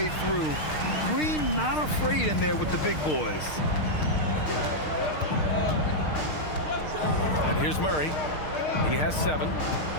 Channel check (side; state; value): right; late; 6.5 ms